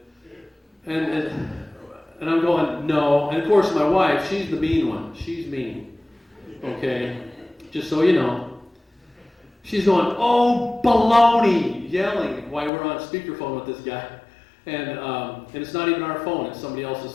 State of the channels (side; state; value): right; drops out; at 12.7 s